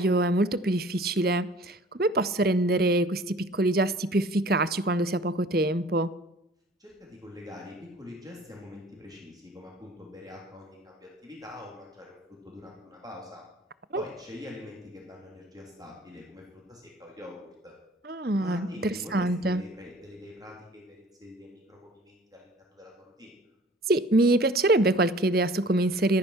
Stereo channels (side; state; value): both; normal; correlation 0.49